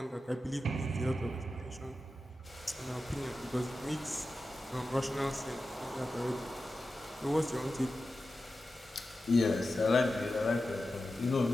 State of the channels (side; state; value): both; normal; correlation 0.92